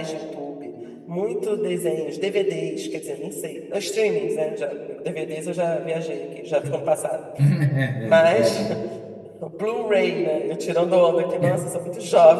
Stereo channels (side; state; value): both; identical; correlation 1.00